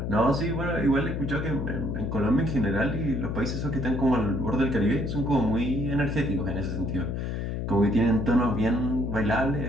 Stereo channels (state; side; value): noise; left; hum, 3 dB below the sound